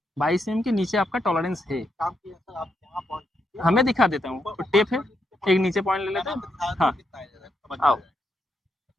22 mm के नीचे आपका टॉलरेंस है। हमें दिखा देता हूँ, तो टेप है, एक नीचे पॉइंट ले लेते हैं। हाँ आओ,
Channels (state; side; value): normal; both; correlation 0.80